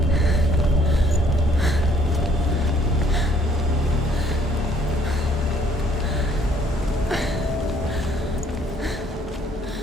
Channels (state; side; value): normal; both; correlation 0.62